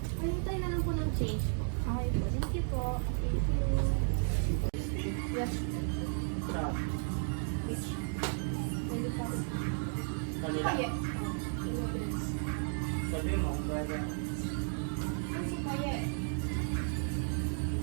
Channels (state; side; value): silent; left; 55 dB below the other